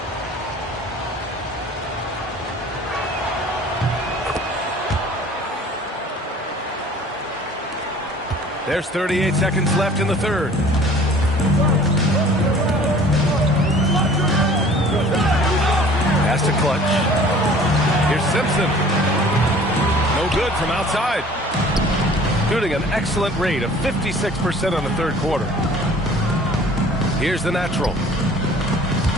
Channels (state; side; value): normal; both; correlation 0.49